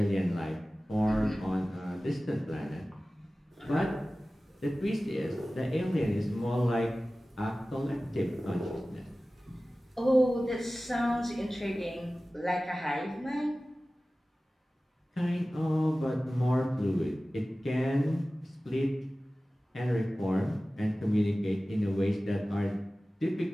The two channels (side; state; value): both; normal; correlation 0.97